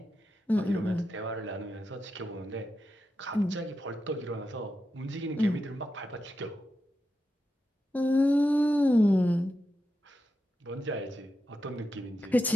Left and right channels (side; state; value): both; normal; correlation 0.88